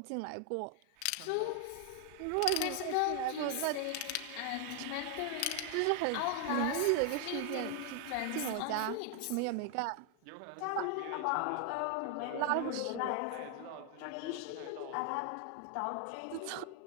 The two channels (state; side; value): different; both; correlation 0.00